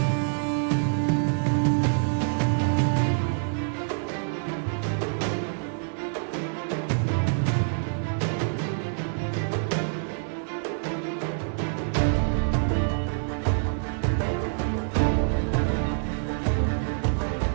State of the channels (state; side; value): silent; left; digital silence